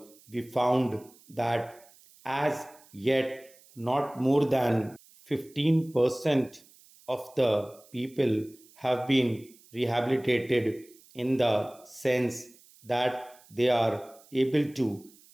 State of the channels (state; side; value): noise; right; hiss, 26 dB below the sound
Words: we found that as yet not more than 15% of the people have been rehabilitated in the sense that they are able to